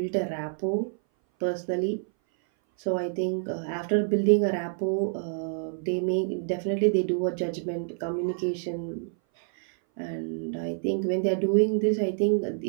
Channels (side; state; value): left; silent; 58 dB below the other